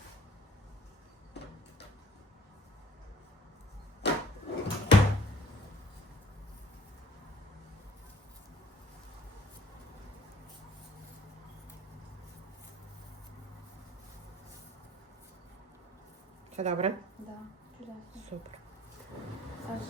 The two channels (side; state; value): both; normal; correlation 0.55